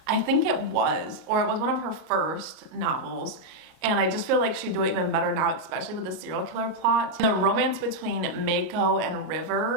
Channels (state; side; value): late; left; 38 ms